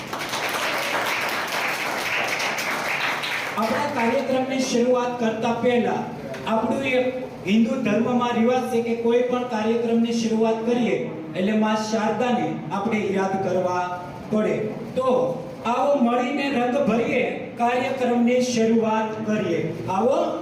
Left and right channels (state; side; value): identical; both; correlation 1.00